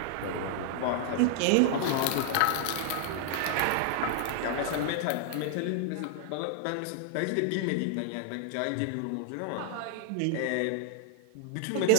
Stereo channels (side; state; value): both; different; correlation 0.00